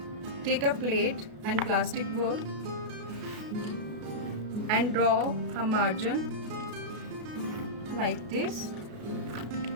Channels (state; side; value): late; left; 33 ms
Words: Take a plate and plastic ball and draw a margin like this